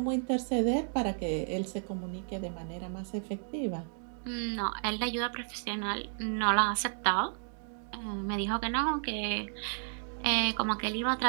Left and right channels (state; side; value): silent; left; digital silence